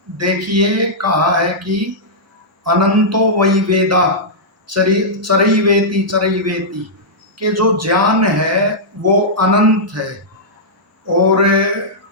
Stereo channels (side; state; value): both; normal; correlation -0.11